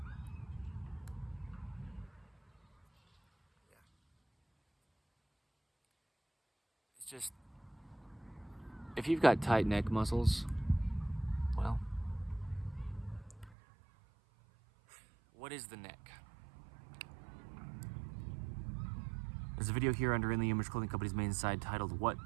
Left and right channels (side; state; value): left; drops out; at 13.6 s